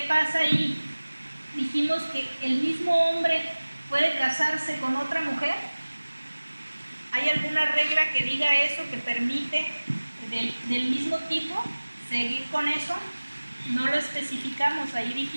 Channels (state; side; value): inverted; both; correlation -1.00